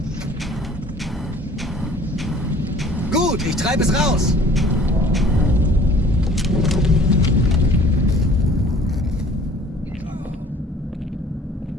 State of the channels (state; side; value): normal; both; correlation 0.51